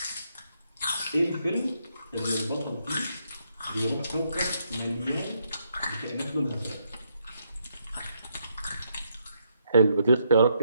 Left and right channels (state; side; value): inverted; both; correlation -0.76